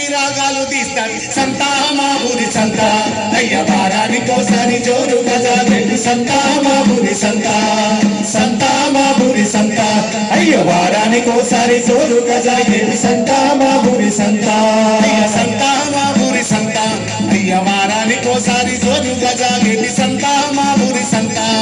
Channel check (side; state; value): both; identical; correlation 1.00